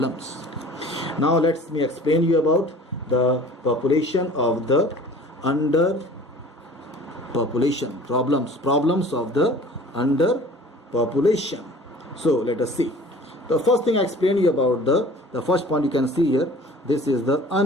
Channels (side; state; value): both; normal; correlation 0.46